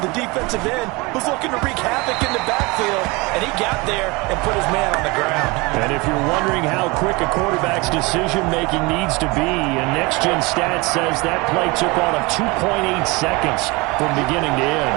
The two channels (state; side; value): quieter; left; 24.9 dB